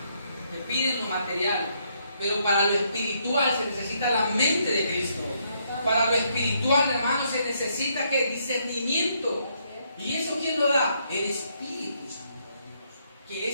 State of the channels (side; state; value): both; inverted; correlation -0.73